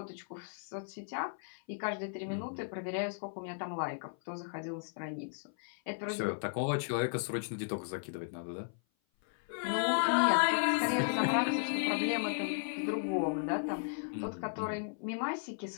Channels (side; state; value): right; silent; 54 dB below the other